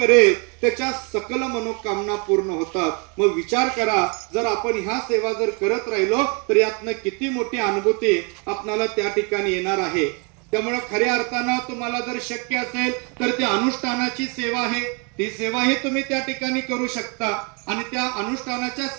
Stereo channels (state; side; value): quieter; left; 34.1 dB